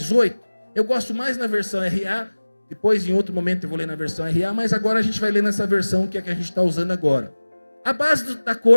Eu gosto mais na versão RA. Depois, em outro momento, eu vou ler na versão RA, mas agora a gente vai ler nessa versão que é a que a gente está usando agora. A base da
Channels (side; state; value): both; inverted; correlation -1.00